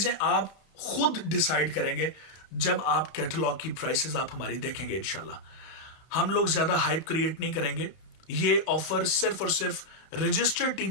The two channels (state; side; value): late; right; 31 ms